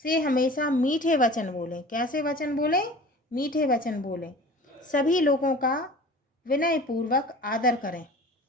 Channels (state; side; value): normal; both; correlation 0.41